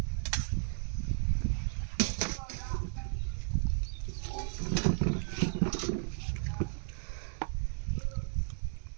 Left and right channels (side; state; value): left; silent; 55 dB below the other